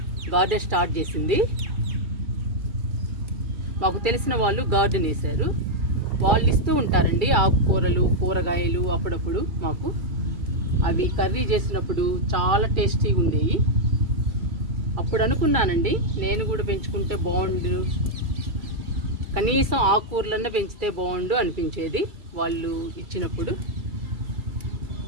గార్డెన్ స్టార్ట్ చేసింది. మాకు తెలిసిన వాళ్ళు గార్డెన్ వేశారు. వాళ్ళు ఇస్తూ ఉంటారండి ఆకుకూరలు, కూరగాయలు అప్పుడప్పుడు మాకు. అవి కర్రీ చేసినప్పుడు చాలా టేస్టీగా ఉండేవి. అప్పుడు అనుకున్నానండి నేను కూడా పెంచుకుంటే బాగుండు, కనీసం ఆకుకూరలన్నా పెంచితే బాగుండు అనిపించేది వాళ్ళు ఇచ్చినప్పుడు.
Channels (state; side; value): late; left; 2.3 ms